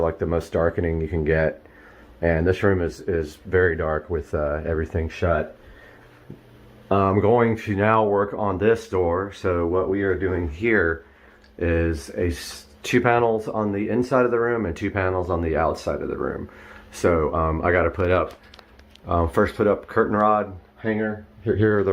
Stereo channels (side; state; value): both; identical; correlation 1.00